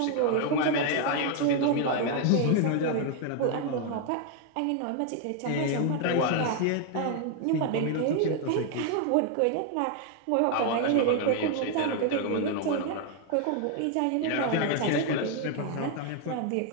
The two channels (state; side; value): different; both; correlation 0.00